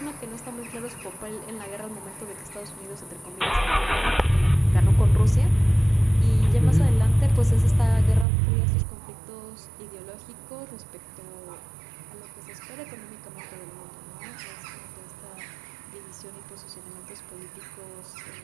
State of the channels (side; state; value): left; drops out; at 8.2 s